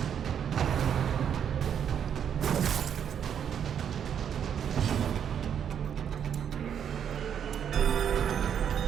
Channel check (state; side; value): quieter; left; 8.5 dB